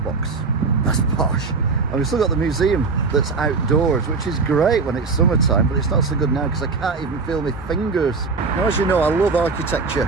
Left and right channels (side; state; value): left; quieter; 4.4 dB